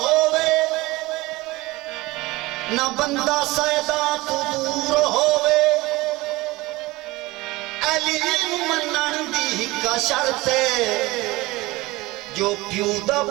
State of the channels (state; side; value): quieter; left; 20.8 dB